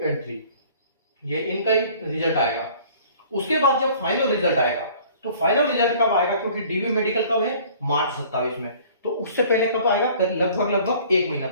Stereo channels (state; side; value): inverted; both; correlation -0.51